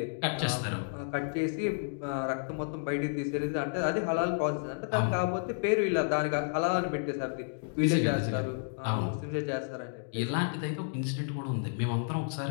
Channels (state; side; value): silent; right; digital silence